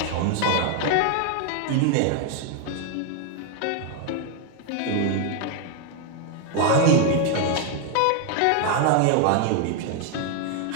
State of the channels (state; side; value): different; both; correlation 0.01